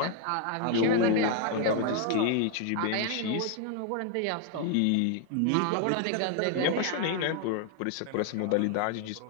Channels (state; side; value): different; both; correlation 0.00